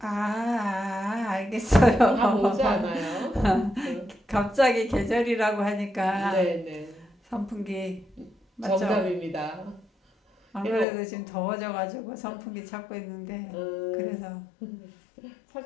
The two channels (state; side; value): drops out; right; at 10.9 s